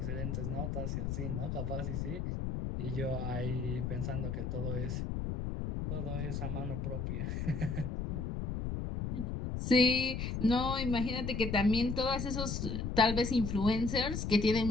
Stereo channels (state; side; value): noise; left; rumble, 2 dB below the sound